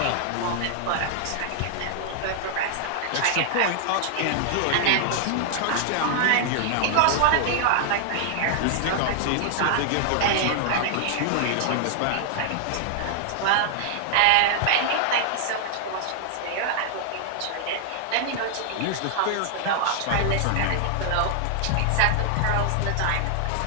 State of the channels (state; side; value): different; both; correlation -0.01